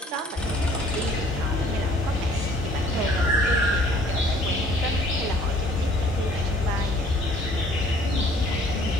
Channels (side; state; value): both; normal; correlation 0.56